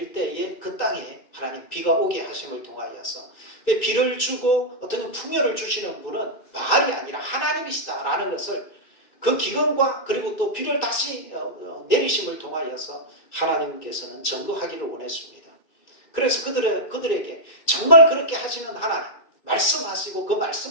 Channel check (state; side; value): late; right; 2.6 ms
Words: 때에 그 땅에 하나님 비가 오게 하심을 통하여서 비를 주고 어떤 풍요를 주시는 분은 바알이 아니라 하나님이시다라는 것을 그 기근과 그리고 또 비를 다시 내리심을 통하여서 하나님께서는 전거하기를 원했습니다. 그래서 그들에게 정말 그렇게 하시는 하나님, 말씀하시고 그